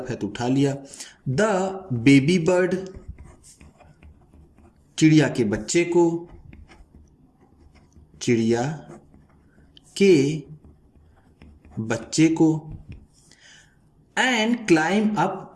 है तो उठा लिया। द बेबी बर्ड, चिड़िया के बच्चे को, चिड़िया के बच्चे को। And climb up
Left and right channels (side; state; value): both; identical; correlation 1.00